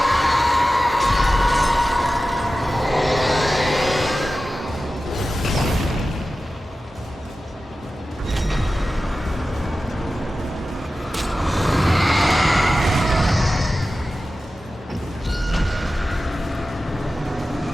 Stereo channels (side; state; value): both; normal; correlation 0.94